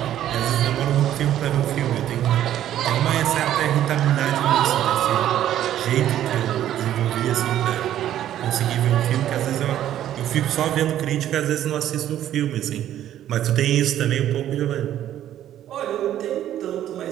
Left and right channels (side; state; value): left; quieter; 11.8 dB